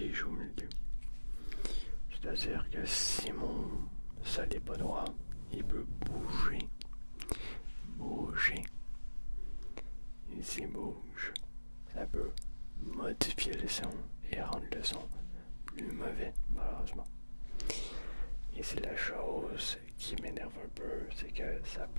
au milieu. C'est-à-dire que si mon sol n'est pas droit, il peut bouger. Et s'il bouge, ça peut modifier le son et rendre le son plus mauvais, malheureusement. Et c'est la chose qui m'énerve un peu, c'est que ça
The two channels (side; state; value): both; inverted; correlation -1.00